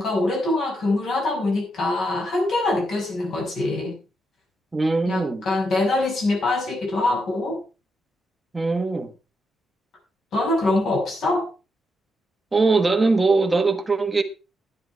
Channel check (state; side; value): normal; both; correlation 0.82